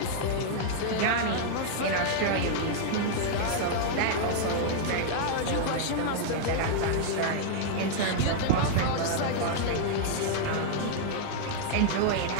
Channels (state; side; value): different; both; correlation -0.01